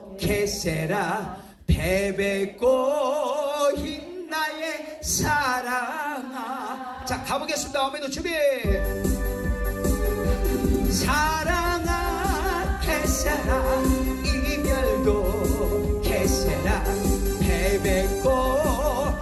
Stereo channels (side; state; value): both; identical; correlation 1.00